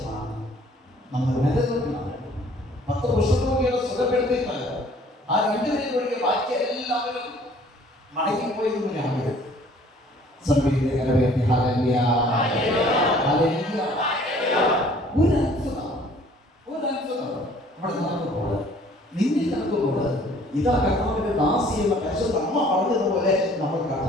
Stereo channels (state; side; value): normal; both; correlation 0.55